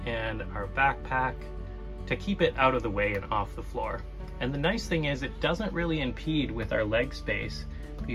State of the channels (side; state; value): both; identical; correlation 1.00